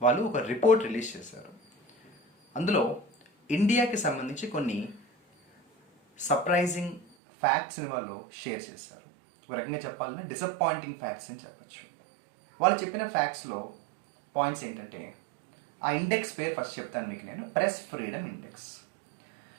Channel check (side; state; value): left; drops out; at 7.1 s